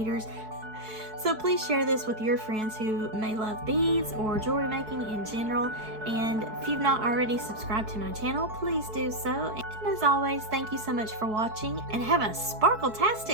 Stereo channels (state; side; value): late; left; 4.6 ms